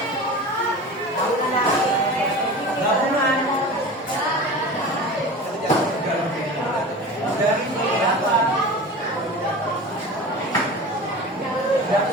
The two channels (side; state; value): both; normal; correlation 0.34